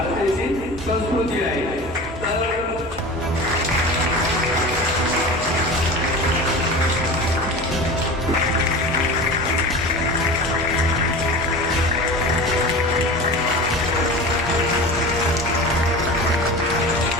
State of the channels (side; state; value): both; normal; correlation 0.33